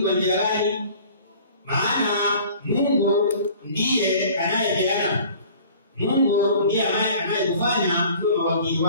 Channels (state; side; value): inverted; both; correlation -0.48